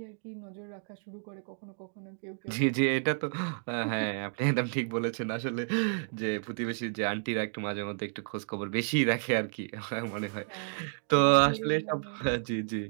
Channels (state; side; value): silent; left; digital silence